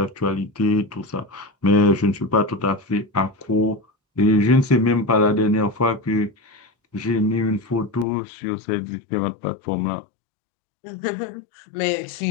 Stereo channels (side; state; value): right; drops out; at 8.1 s